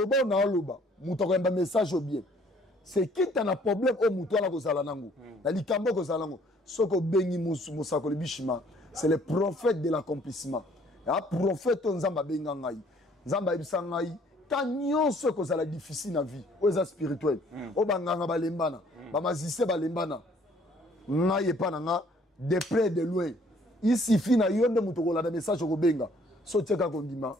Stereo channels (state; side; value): normal; both; correlation 0.60